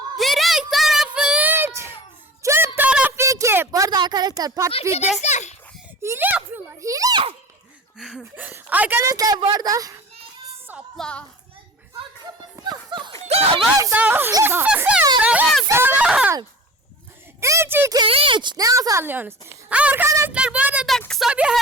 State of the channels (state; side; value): normal; both; correlation 0.37